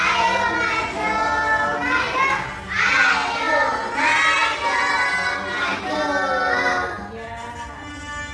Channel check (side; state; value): both; identical; correlation 1.00